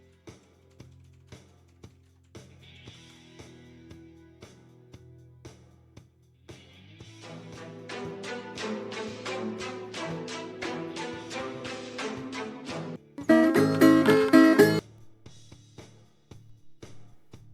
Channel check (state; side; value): identical; both; correlation 1.00